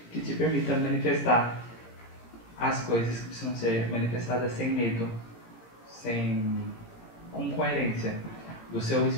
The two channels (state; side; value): late; right; 17 ms